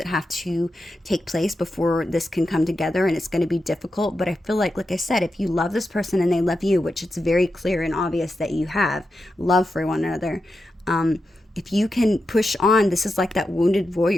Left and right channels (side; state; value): both; normal; correlation 0.89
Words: have to take place before this can come together, and it's going to be difficult. But I feel like I said, if you love this person and they love you, which it's very clear and obvious that you have love for one another, if you can push on, this is like that wounded